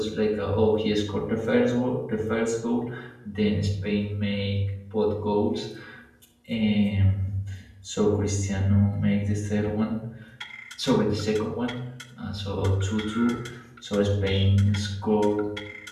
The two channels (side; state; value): both; identical; correlation 1.00